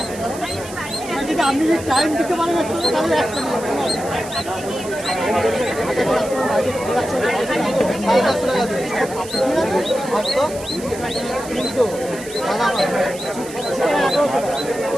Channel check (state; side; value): noise; right; hiss, 15 dB below the sound